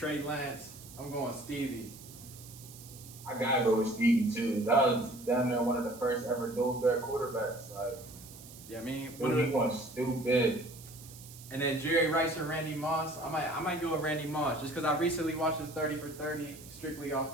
Lance. I'm going Stevie. I gotta go with Stevie too. That was down there one of the first ever dual threat quarterbacks. Like, yeah, I mean, he went stupid. And then Jerry Rice or Randy Moss. I might go with Randy Moss just because I recently watched his 30 for 30 strictly off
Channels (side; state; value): right; noise; hiss, 17 dB below the sound